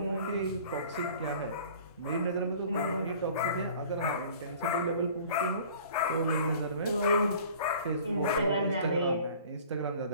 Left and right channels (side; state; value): both; inverted; correlation -0.48